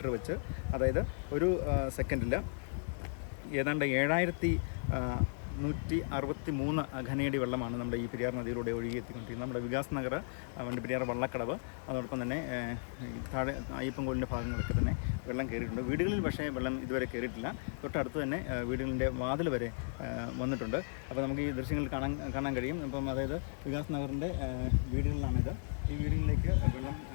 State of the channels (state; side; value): silent; right; digital silence